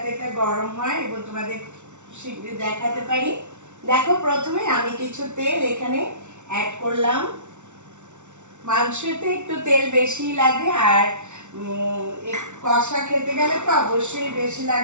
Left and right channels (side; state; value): left; late; 0.83 ms